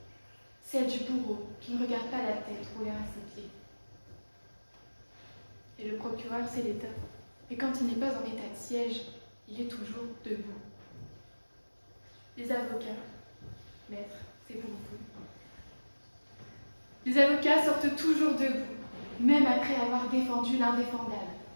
celle du bourreau qui ne regarde pas la tête rouler à ses pieds. Et le procureur, c'est l'État. Et quand il n'est pas en état de siège, il est toujours debout. Les avocats, maître, c'est pour vous. Les avocats sortent toujours debout, même après avoir défendu l'indéfendable.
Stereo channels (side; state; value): both; inverted; correlation -1.00